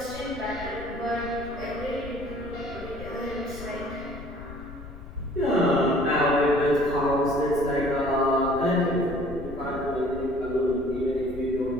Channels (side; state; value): left; noise; rumble, 14 dB below the sound